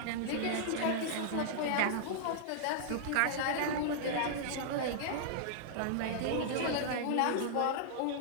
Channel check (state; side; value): different; both; correlation -0.01